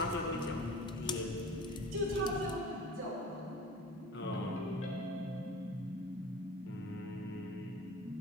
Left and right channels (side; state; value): both; normal; correlation 0.39